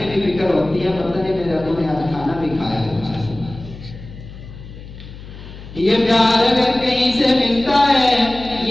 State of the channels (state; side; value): noise; left; hum, 15 dB below the sound